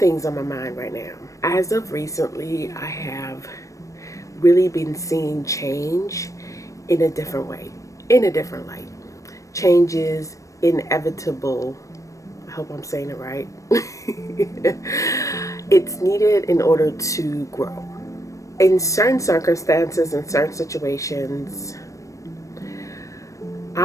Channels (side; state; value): right; late; 0.16 ms